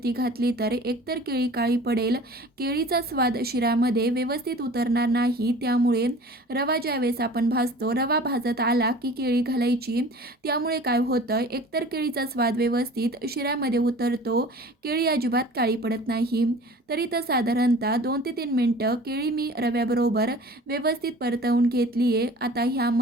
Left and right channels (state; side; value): normal; both; correlation 0.43